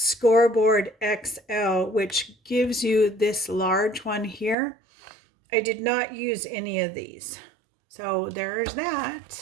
XL, which gives you this large one here. I did not use any of these. So there's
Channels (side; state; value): left; drops out; at 4.5 s